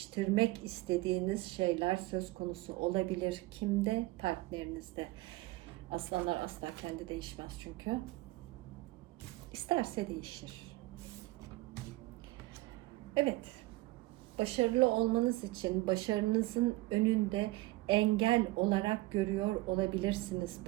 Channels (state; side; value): quieter; left; 19.9 dB